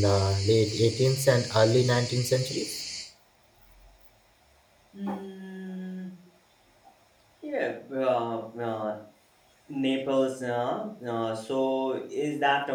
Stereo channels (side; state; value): both; identical; correlation 1.00